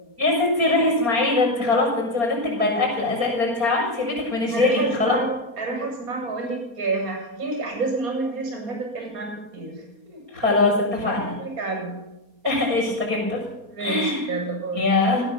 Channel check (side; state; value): left; late; 4.3 ms